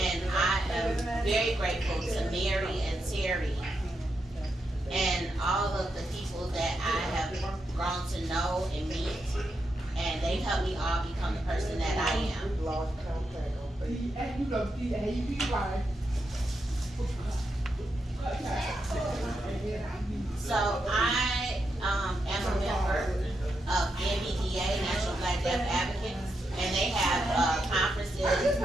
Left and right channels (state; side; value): normal; both; correlation 0.84